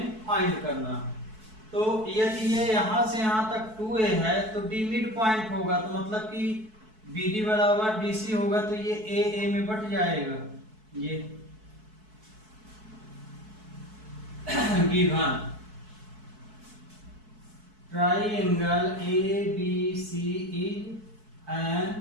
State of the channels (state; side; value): late; left; 4.6 ms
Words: फाइंड करना है। तो यदि ये यहाँ से यहाँ तक 2A है तो D मिड पॉइंट होगा, तो मतलब कि BD बराबर DC होगा, तो ये AA में बट जाएगा। ये given triangle ABC is an